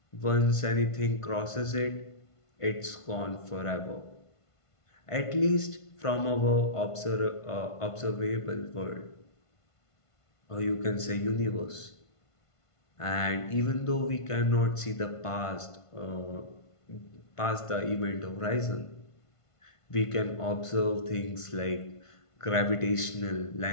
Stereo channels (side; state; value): right; late; 1.5 ms